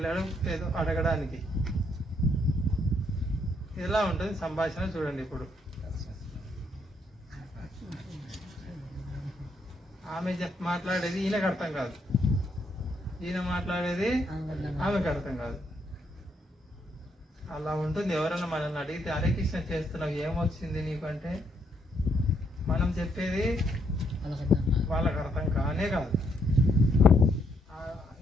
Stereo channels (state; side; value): normal; both; correlation 0.74